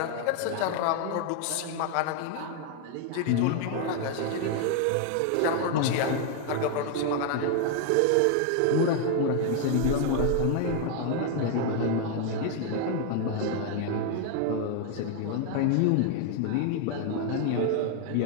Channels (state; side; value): different; both; correlation 0.00